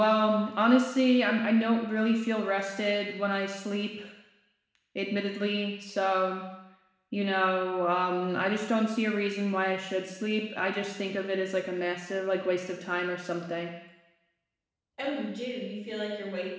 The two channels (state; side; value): identical; both; correlation 1.00